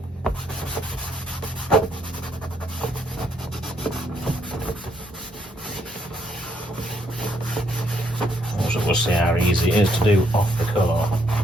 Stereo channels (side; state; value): both; normal; correlation 0.73